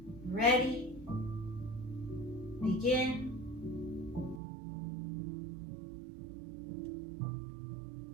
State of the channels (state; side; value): drops out; left; at 4.4 s